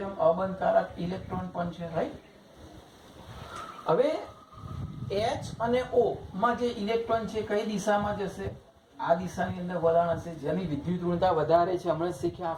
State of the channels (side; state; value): both; identical; correlation 1.00